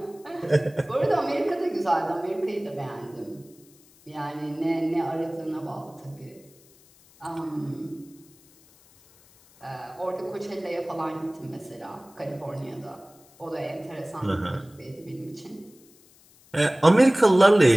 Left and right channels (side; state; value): left; noise; hiss, 28 dB below the sound